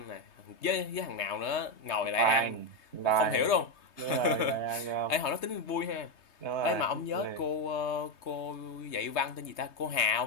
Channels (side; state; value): right; late; 3.2 ms